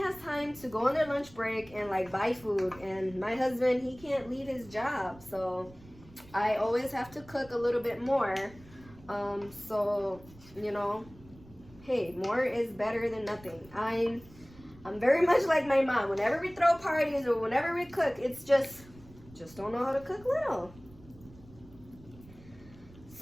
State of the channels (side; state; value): right; noise; rumble, 22 dB below the sound